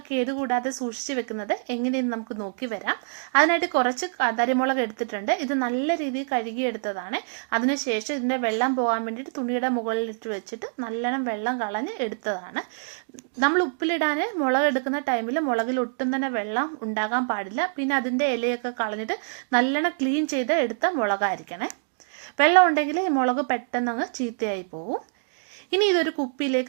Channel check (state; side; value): silent; left; digital silence